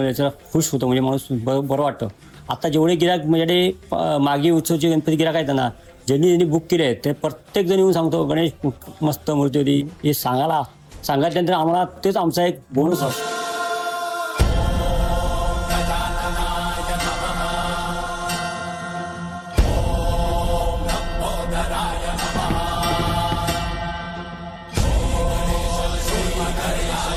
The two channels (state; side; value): identical; both; correlation 1.00